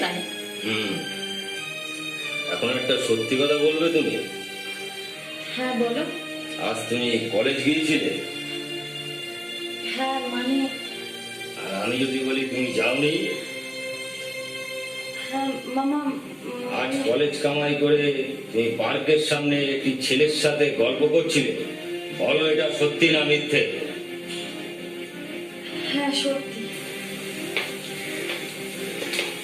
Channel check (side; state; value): both; identical; correlation 1.00